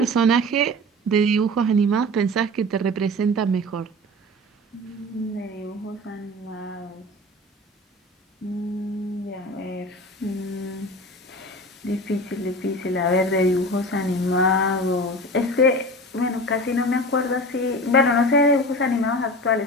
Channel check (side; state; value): both; normal; correlation 0.34